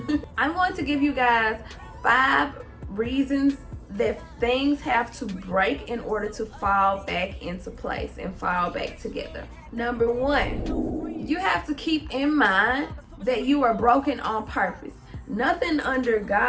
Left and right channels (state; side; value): identical; both; correlation 1.00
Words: I'm going to give you guys 5 reasons that things have to break in order to fall back into place and fall back together. Number 1, you have to keep in mind that you are broken on purpose. Nothing under